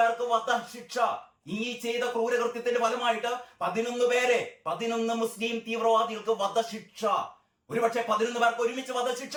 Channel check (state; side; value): identical; both; correlation 1.00